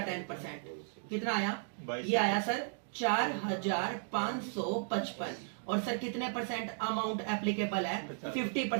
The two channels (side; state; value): left; silent; digital silence